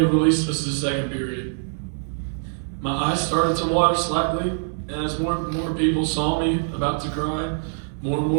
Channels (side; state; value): left; silent; 63 dB below the other